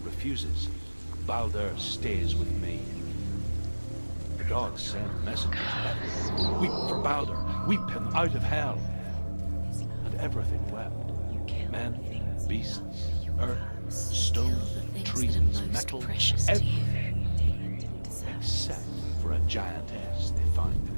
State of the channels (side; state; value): both; inverted; correlation -1.00